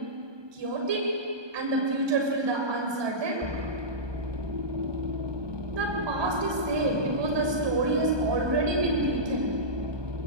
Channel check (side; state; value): left; late; 1.2 ms